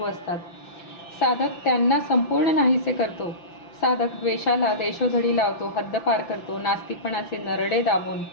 असतात. साधक त्यांना संपूर्ण नाहीसे करतो. साधक द्वेषाला देशोधडी लावतो, हद्दपार करतो, नास्तिकपणाचे नरडे दाबून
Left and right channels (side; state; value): right; late; 5.9 ms